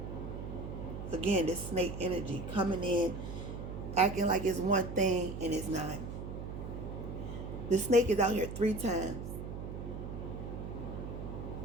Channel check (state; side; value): noise; right; hum, 7 dB below the sound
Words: Again, this snake energy coming in, acting like it's one thing and it's not. The snake is out here 3 times.